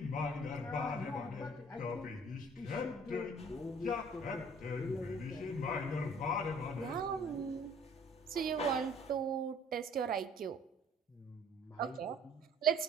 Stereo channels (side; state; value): both; normal; correlation 0.54